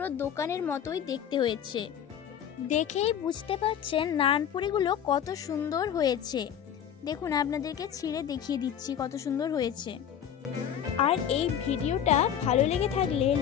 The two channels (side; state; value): right; quieter; 9.2 dB